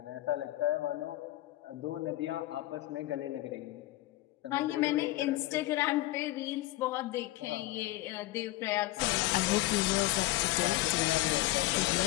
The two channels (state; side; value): quieter; right; 17.6 dB